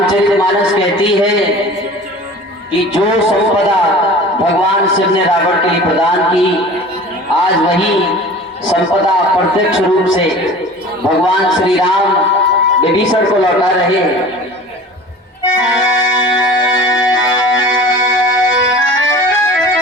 कहती है कि जो संपदा भगवान शिव ने रावण के लिए प्रदान की, आज वही संपदा प्रत्यक्ष रूप से भगवान श्री राम विभीषण को लौटा रहे हैं।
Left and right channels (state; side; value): normal; both; correlation 0.41